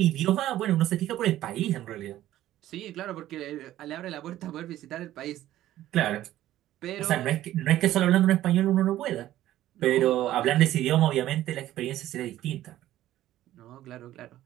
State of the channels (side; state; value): left; quieter; 13.8 dB